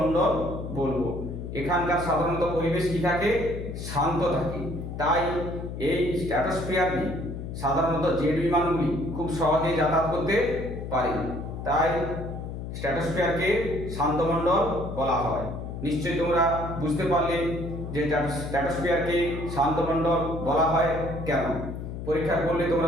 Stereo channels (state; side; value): noise; left; hum, 7 dB below the sound